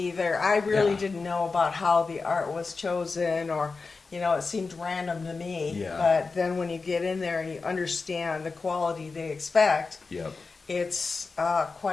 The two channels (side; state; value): right; quieter; 4.3 dB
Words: I really didn't know about how the art was chosen, or, it seemed random to me. Yeah. But then when you get in there and you understand the quality they expect, Yep. it's